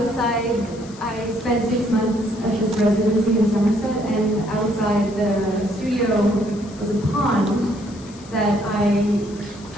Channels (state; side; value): noise; left; hiss, 21 dB below the sound